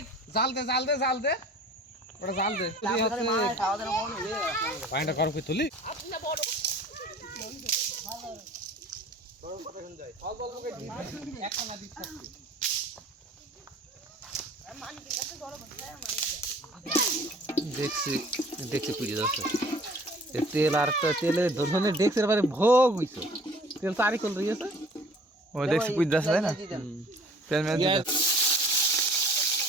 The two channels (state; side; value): normal; both; correlation 0.49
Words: জাল দে ওটা জাল দে পাইনা করো কি তুলি দেখছি পুজো যাচ্ছে তেল আর তেলে ধরনের দেখছে এবারে ভোগ হইছে তেল তারি কল রয়েছে ও দেখছি পুজ দাস তাই না তেল মেল দিতে